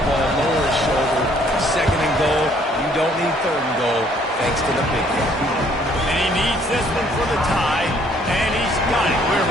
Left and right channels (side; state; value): both; normal; correlation 0.63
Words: lower his shoulder. 2nd and goal. You don't need 3rd and goal, thanks to the big guy. And he needs this one for the tie, and he's got it. We're